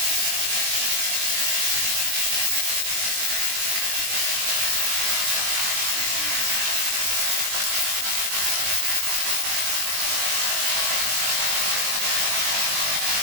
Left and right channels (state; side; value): late; left; 20 ms